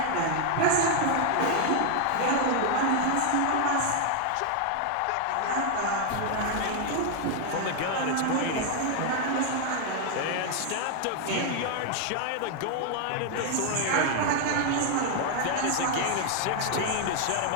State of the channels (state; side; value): different; both; correlation 0.00